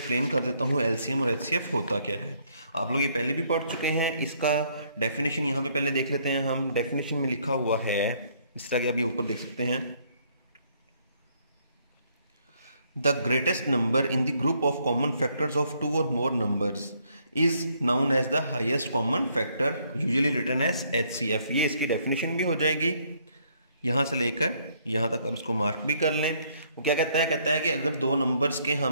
कर देता हूँ एलसीएम और एचसीएफ होता क्या है। आप लोग ये पहले भी पढ़ चुके हैं। इसका डेफिनेशन यहाँ पे पहले देख लेते हैं हम। डेफिनेशन में लिखा हुआ है इस तरह के, आप ये ऊपर देख सकते हैं। The greatest number in the group of common factors of two or more numbers is known as the highest common factor, usually written as HCF। ये इसकी डेफिनेशन भी हो जाएगी। यहाँ से लेकर यहाँ तक आप इसको मार्क भी कर लें। वो क्या कहता है कि अगर दो नंबर्स के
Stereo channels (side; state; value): both; inverted; correlation -0.68